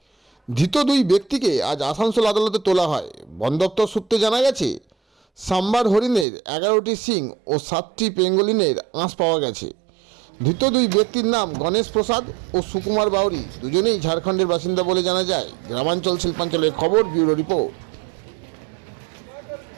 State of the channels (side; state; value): left; drops out; at 6.2 s